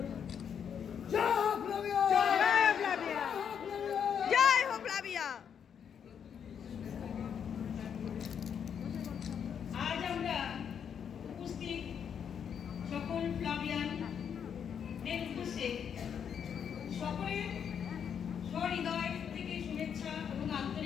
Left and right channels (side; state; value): right; quieter; 7.8 dB